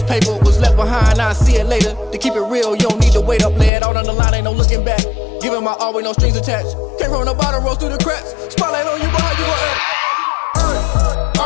paper. Was left behind, I'll see it later. To keep it real, you don't need to wait up. Lay it out on the line, ain't no looking back. Giving my all with no strings attached. Came from the bottom, rose through the cracks. Spotlight on you, but how you gon' act? I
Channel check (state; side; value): drops out; right; at 3.7 s